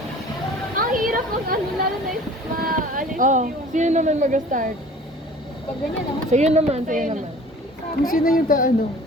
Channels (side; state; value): both; normal; correlation 0.46